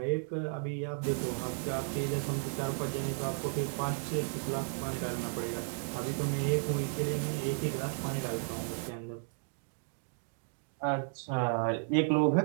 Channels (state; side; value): silent; left; 55 dB below the other